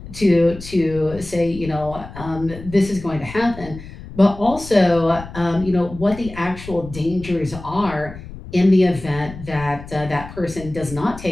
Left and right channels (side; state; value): left; noise; rumble, 14 dB below the sound